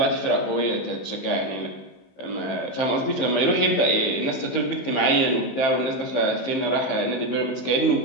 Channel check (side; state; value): right; late; 15 ms